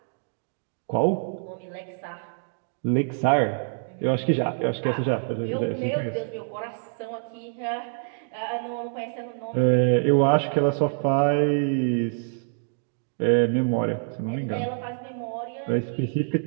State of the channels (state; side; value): silent; left; digital silence